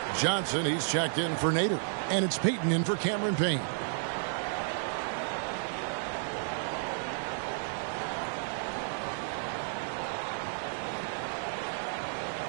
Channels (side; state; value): left; silent; digital silence